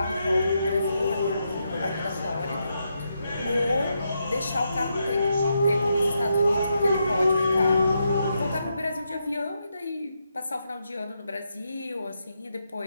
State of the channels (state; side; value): inverted; both; correlation -0.82